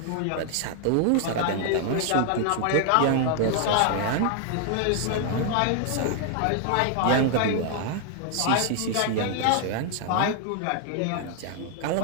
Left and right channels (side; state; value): both; different; correlation 0.00